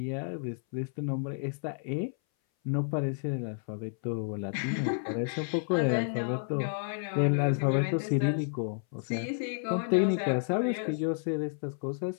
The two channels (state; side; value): silent; right; 57 dB below the other